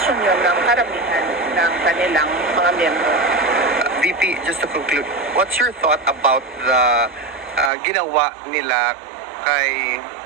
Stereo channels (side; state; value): left; drops out; at 7.7 s